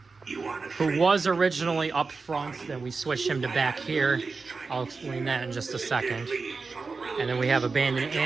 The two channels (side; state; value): left; quieter; 4.3 dB